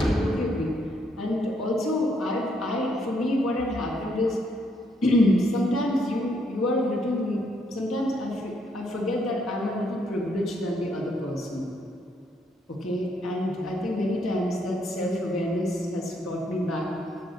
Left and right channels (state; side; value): normal; both; correlation 0.72